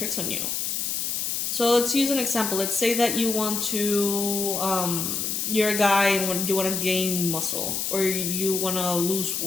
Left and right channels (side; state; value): left; noise; hiss, 1 dB below the sound